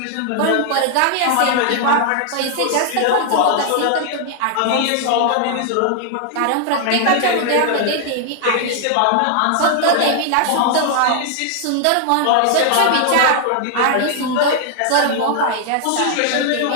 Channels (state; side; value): different; both; correlation 0.00